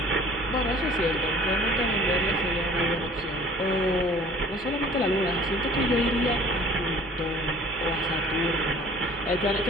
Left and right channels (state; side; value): normal; both; correlation 0.50